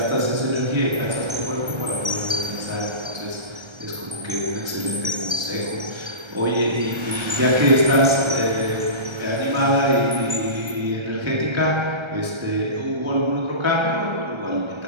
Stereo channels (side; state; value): left; late; 1.3 ms